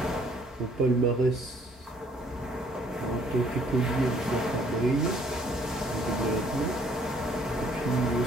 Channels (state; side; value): normal; both; correlation 0.62